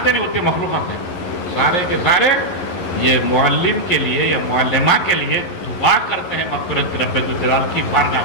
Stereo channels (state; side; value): late; right; 11 ms